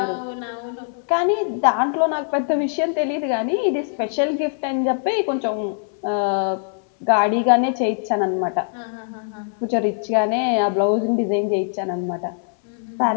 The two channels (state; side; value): silent; right; 64 dB below the other